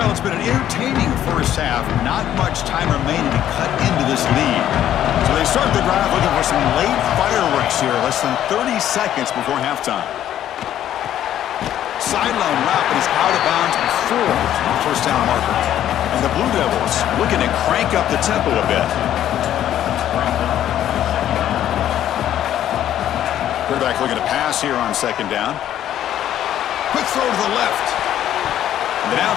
it's been an entertaining 1st half. Not much time remaining to cut into this lead. So they start the drive looking for some late fireworks here. Less than 30 seconds before halftime. Sideline route, but he's out of bounds before the 1st down marker. And the Blue Devils looking to crank up the tempo a bit. Quarterback looking to pass here on 2nd down. Quick throw to the left. The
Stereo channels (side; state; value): right; quieter; 11.4 dB